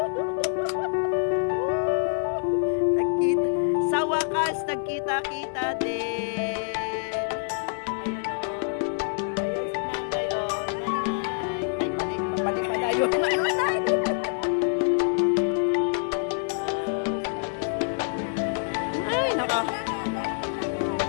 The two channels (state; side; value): silent; right; digital silence